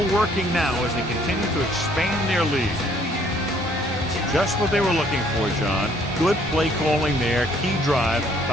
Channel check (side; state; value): both; normal; correlation 0.63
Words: working now as they continue to expand their lead. Just what they were looking for, John. Good play calling there. Key drive,